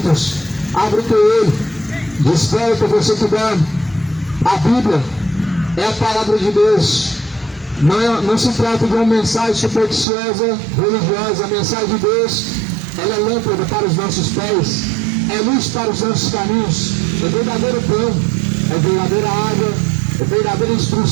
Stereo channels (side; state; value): left; drops out; at 10.1 s